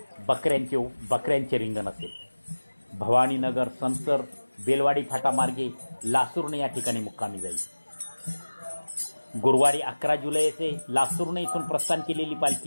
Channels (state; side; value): inverted; both; correlation -1.00